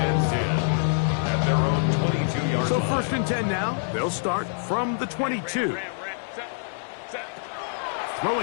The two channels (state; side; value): silent; right; digital silence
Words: 10 at their own 22-yard line. So first and 10 now. They'll start from the 22.